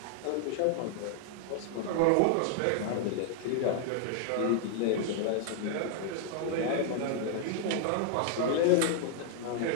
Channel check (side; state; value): both; different; correlation 0.00